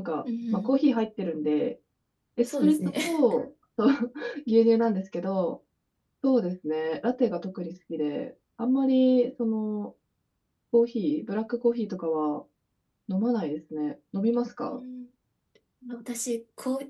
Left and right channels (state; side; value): identical; both; correlation 1.00